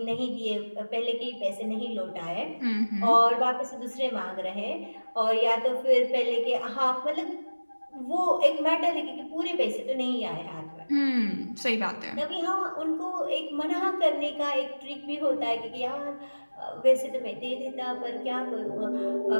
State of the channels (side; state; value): both; inverted; correlation -1.00